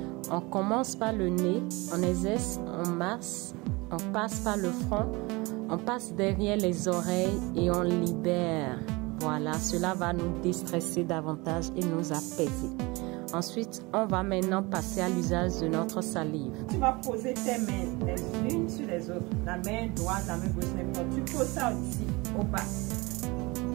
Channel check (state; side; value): quieter; left; 24.4 dB